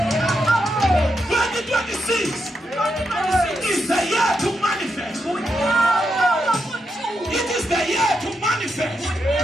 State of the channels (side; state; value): both; normal; correlation 0.83